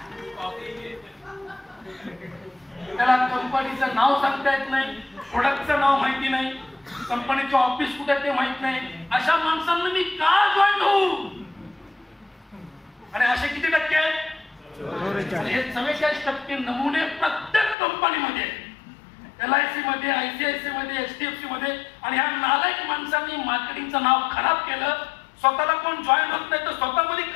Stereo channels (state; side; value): drops out; right; at 17.8 s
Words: त्याला कंपनीचं नाव सांगता येत नाही, प्रोडक्टचं नाव माहिती नाही, कंपनीचं ऑफिस कुठे ते माहित नाही. अशा माणसांना मी का जॉईन होऊ? आणि असे किती टक्के आहेत? हे 44% नमुने प्रत्येक कंपनीमध्ये, LIC मध्ये, ICICI मध्ये, HDFC मध्ये. आणि ह्या नालायक माणसांनी मार्केटिंगचं नाव खराब केलं. स्वतःला कोण जॉईन होत नाही तर स्वतःमध्ये